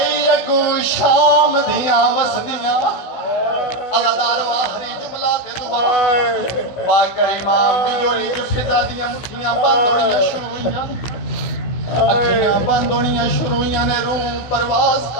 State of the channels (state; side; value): late; right; 16 ms